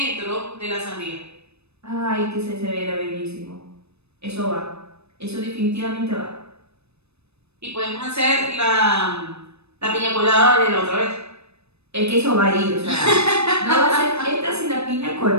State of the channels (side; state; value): left; late; 0.79 ms